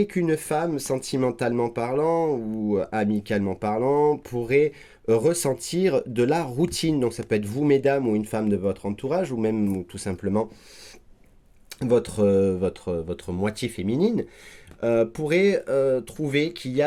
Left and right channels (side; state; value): both; identical; correlation 1.00